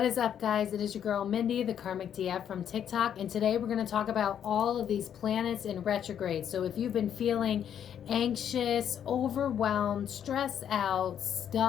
What is up, guys? It is your girl Mindy, the Karmic DF from TikTok, and today we're going to talk about all of these planets in retrograde. So if you've been feeling anxious, overwhelmed, stressed out,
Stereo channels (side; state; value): right; quieter; 9.2 dB